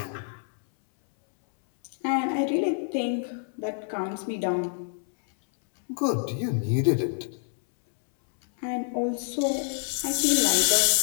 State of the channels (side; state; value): right; silent; 60 dB below the other